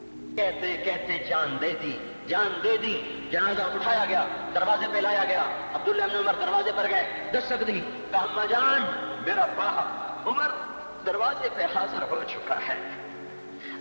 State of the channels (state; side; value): inverted; both; correlation -1.00